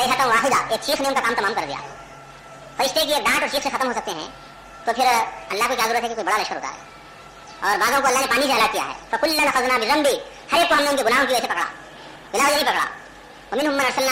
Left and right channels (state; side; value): identical; both; correlation 1.00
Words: واحدہ، ایک چیخ نے ان کا کام تمام کر دیا. فرشتے کی ایک ڈانٹ اور چیخ سے ختم ہو سکتے ہیں، تو پھر اللہ کو کیا ضرورت ہے کہ کوئی بڑا لشکر اتارے. اور بعضوں کو اللہ نے پانی سے ہلاک کیا ہے. فکلا اخذنا بذنبہ، ہر ایک کو ہم نے ان کے گناہوں کی وجہ سے پکڑا، بلا وجہ نہیں پکڑا. ومنهم من